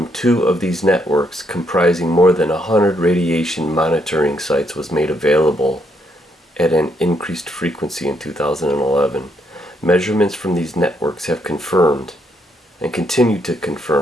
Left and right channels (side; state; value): both; normal; correlation 0.74